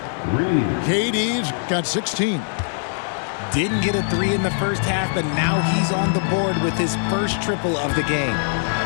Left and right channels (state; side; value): silent; right; digital silence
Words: KD's got 16. Didn't get a 3 in the first half, but now he's on the board with his first triple of the game.